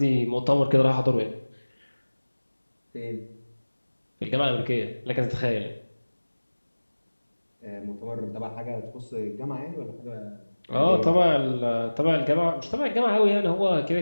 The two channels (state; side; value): inverted; both; correlation -1.00